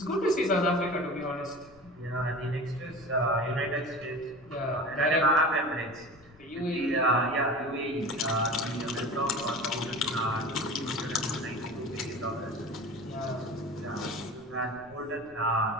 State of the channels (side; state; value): left; noise; rumble, 25 dB below the sound